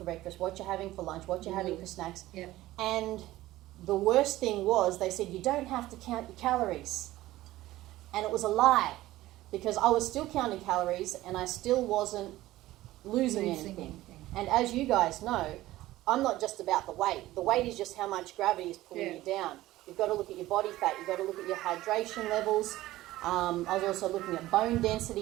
breakfast, what you're having for lunch, what you're having for snacks. Yeah. And the worst thing was they said you don't have to count your calories. And it was a lie, because I was still counting calories and I still wasn't losing anything. And as you guys know, I'm not just about the weight. The weight is just how much gravity is pulling you down. You've got to look at your body fat. You've got to look at your hydration levels. I was also looking at bone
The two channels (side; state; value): left; quieter; 16.3 dB